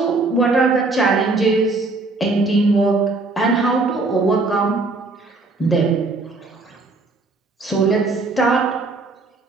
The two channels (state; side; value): quieter; left; 3.4 dB